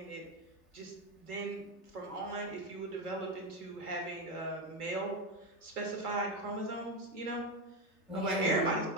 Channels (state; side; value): normal; both; correlation 0.12